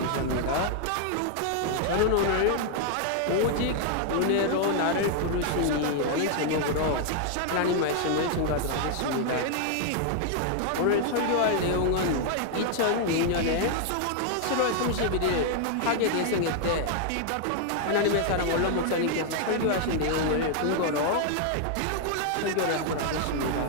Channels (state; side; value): different; both; correlation 0.00